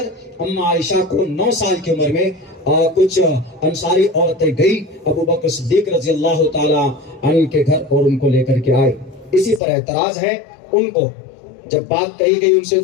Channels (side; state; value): right; drops out; at 9.6 s